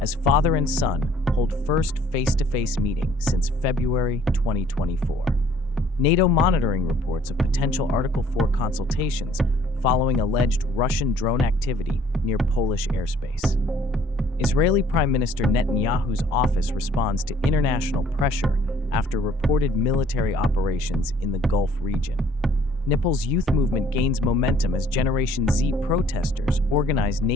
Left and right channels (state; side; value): normal; both; correlation 0.59